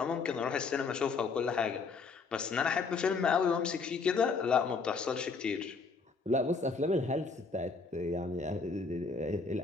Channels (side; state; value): right; quieter; 4.6 dB